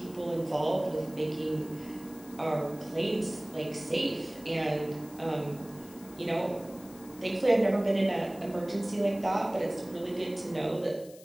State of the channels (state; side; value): noise; left; hiss, 21 dB below the sound